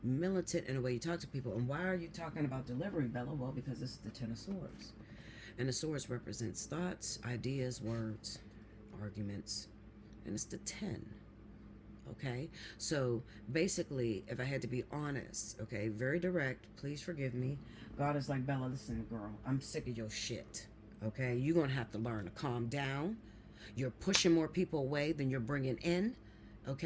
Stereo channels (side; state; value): both; identical; correlation 1.00